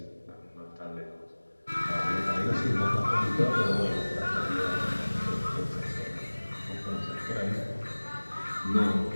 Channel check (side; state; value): both; inverted; correlation -1.00